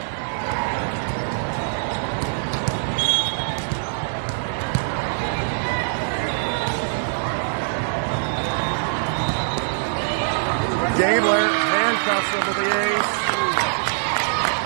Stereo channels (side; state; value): left; silent; digital silence